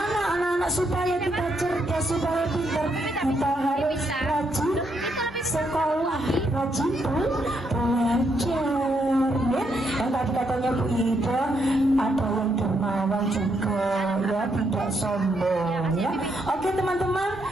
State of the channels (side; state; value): both; normal; correlation 0.77